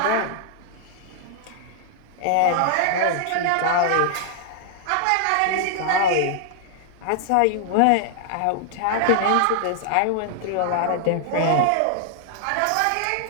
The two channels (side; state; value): both; different; correlation 0.00